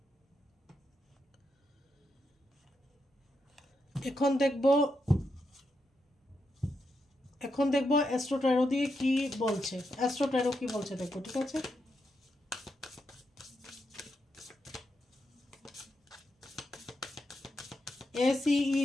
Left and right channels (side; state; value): both; normal; correlation 0.83